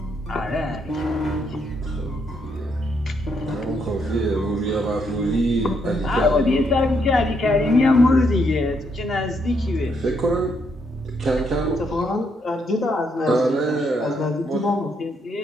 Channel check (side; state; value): both; normal; correlation 0.75